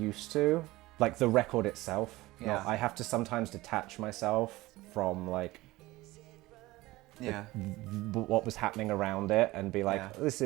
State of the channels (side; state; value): left; quieter; 19.1 dB